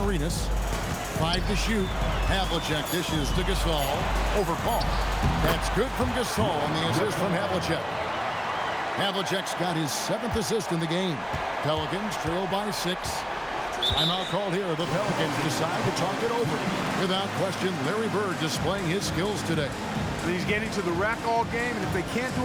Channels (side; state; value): both; identical; correlation 1.00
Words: 5 to shoot. Havlicek dishes to Gasol. Over Paul. That's good from Gasol on the assist from Havlicek. Havlicek's got his 7th assist in the game. Pelicans trail by 6. Timeout called here. The Pelicans decide to talk it over. Without question, Larry Bird displaying his skills today. And he's getting to the rack all game, and if they can't